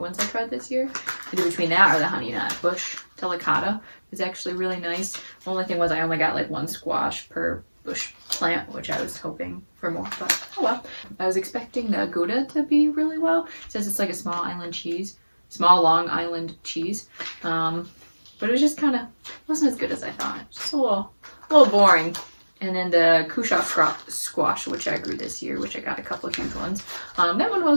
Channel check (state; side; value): inverted; both; correlation -1.00